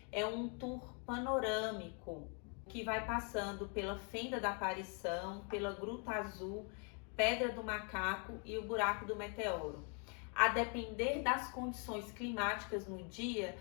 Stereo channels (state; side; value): quieter; right; 38.1 dB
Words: é um tour panorâmico, que vai passando pela Fenda da Aparição, pela Gruta Azul, Pedra do Macaco e o Buraco do Meteoro. A depender das condições climáticas no dia,